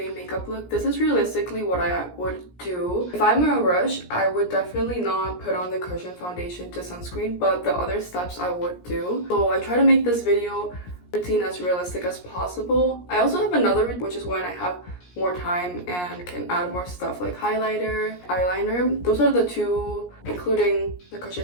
makeup look. This is realistically what I would do. If I'm in a rush, I would definitely not put on the cushion foundation to sunscreen, but the other steps I would do. So I try to make this video routine as realistic as possible. I also have another, which is when I have more time and can add more stuff like highlighter, eyeliner. Those are the 2, including the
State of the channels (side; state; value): right; late; 17 ms